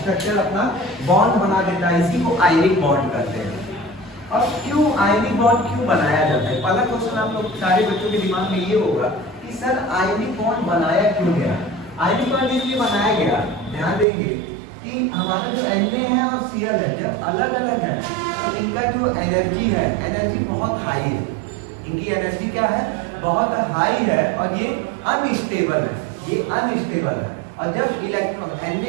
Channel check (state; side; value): drops out; left; at 14.1 s